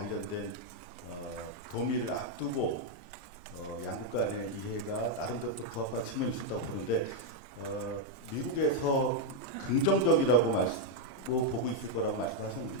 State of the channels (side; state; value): left; late; 1.3 ms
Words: 도미를 앞두고 양국 간의 이해가 나름대로 부합한 측면이 있었다고 보는데 미국에서 긍정적이라고 보고 있을 거라고